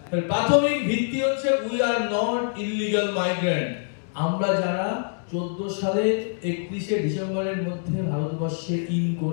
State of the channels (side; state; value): right; silent; 62 dB below the other